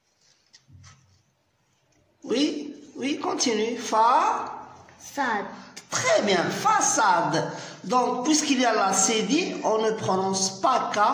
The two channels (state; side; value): identical; both; correlation 1.00